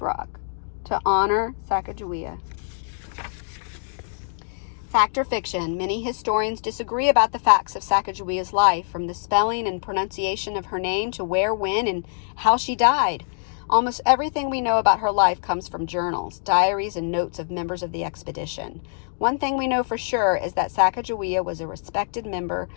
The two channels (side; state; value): right; silent; digital silence